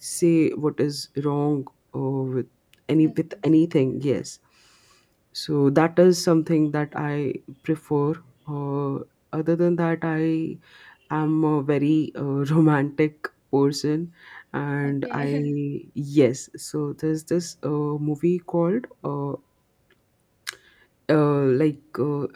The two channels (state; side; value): identical; both; correlation 1.00